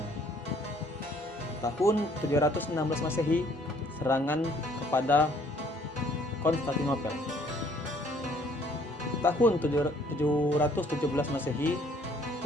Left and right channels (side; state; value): both; normal; correlation 0.61